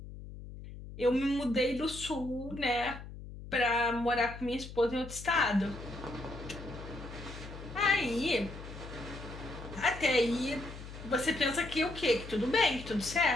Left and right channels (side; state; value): left; noise; hum, 12 dB below the sound